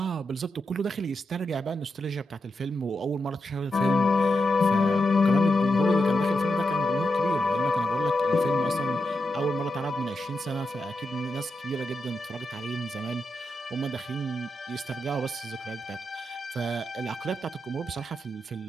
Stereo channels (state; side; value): normal; both; correlation 0.86